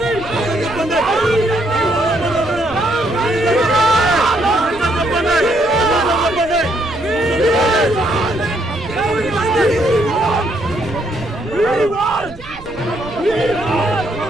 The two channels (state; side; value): noise; right; rumble, 19 dB below the sound